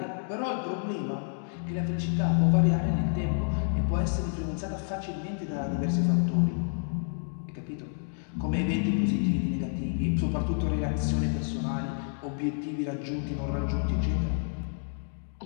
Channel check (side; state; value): right; silent; digital silence